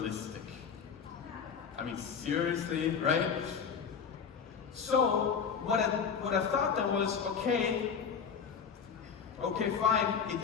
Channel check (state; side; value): quieter; right; 6.6 dB